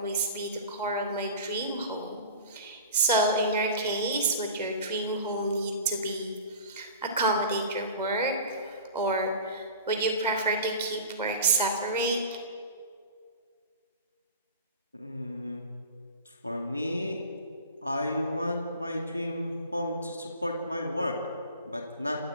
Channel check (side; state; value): both; inverted; correlation -0.37